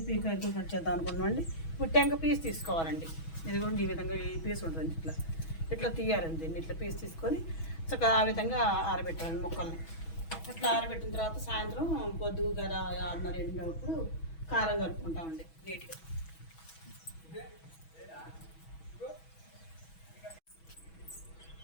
ఈ కాయలు కట్ చేద్దాం అనుకున్నామండి. ఇప్పుడు టెంక పీస్ తీసుకోవాలండి. ఇదిగోండి ఈ విధంగా ఈ పీస్ ఉంటుంది. ఇట్లా ఇట్లా తీయాలండి. దీన్ని ఇట్లా పీస్ తీసుకొని చక్కగా ఆ విధంగా ఆరబెట్టాలండి ముక్కల్ని. అట్లా ఆరబెట్టిన తర్వాత సాయంత్రం పొద్దుగు కదా 6:30 కారం కలుపుకుంటామండి నీట్గా.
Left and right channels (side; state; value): right; late; 6.2 ms